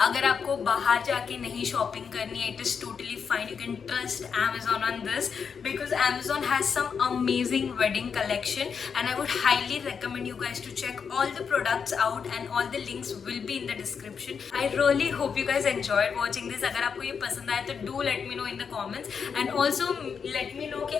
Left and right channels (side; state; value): right; quieter; 6.3 dB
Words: अगर आपको बाहर जाके नहीं शॉपिंग करनी है, it is totally fine. You can trust Amazon on this because Amazon has some amazing wedding collection, and I would highly recommend you guys to check all the products out, and all the links will be in the description. I really hope you guys enjoyed watching this. अगर आपको ये पसंद आया तो do let me know in the comments, and also let me know